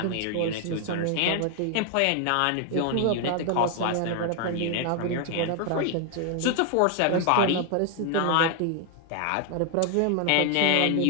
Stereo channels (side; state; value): both; different; correlation 0.00